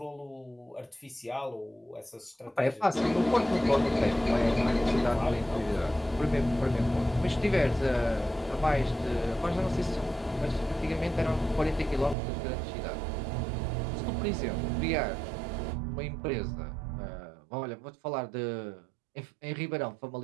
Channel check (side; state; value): left; drops out; at 12.2 s